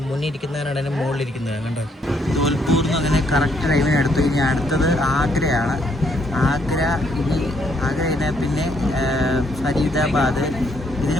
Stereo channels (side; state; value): both; normal; correlation 0.71